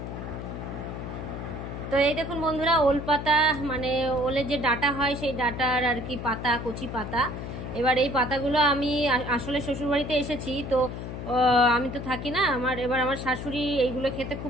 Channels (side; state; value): left; noise; hum, 7 dB below the sound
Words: তো এই দেখুন বন্ধুরা, ওল পাতা, মানে ওলের যে ডাটা হয় সেই ডাটার আর কি পাতা, কচি পাতা। এবার এই পাতাগুলো আমি আসলে শ্বশুরবাড়িতে এসেছি, তো আমি তো থাকি না। আমার শাশুড়ি এইগুলো খেতে